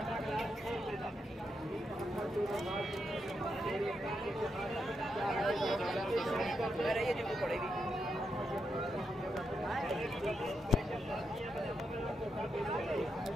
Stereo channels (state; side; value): normal; both; correlation 0.83